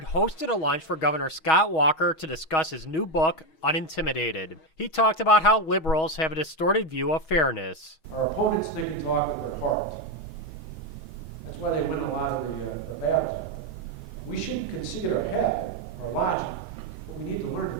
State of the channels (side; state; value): right; late; 6.3 ms